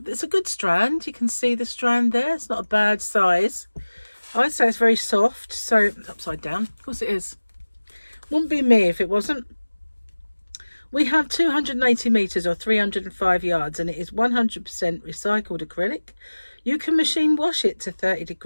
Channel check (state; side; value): inverted; both; correlation -1.00